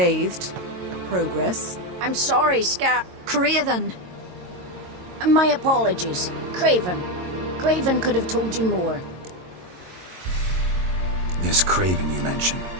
Progress. I'm sorry, Craven! My apologies. Craven. Craven could have told you more. This Craven you mentioned,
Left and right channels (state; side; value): late; left; 22 ms